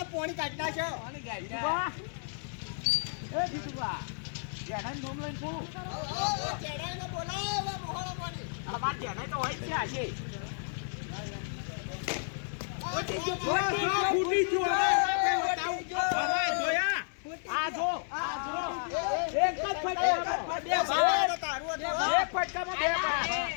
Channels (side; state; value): right; silent; 57 dB below the other